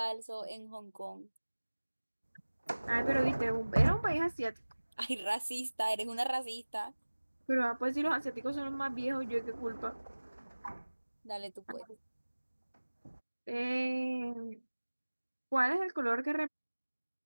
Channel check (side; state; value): both; inverted; correlation -1.00